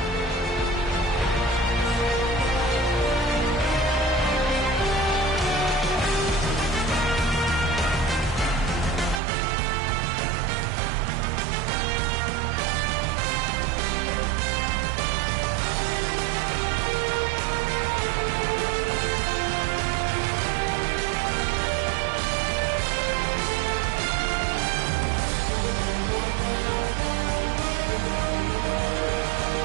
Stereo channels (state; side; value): drops out; left; at 9.2 s